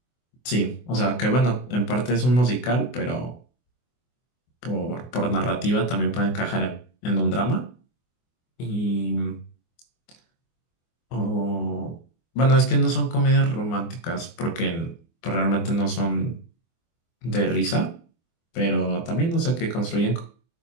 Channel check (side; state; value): right; late; 24 ms